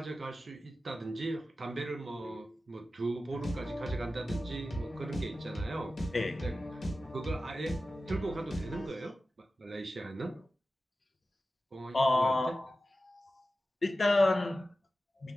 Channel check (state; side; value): normal; both; correlation 0.94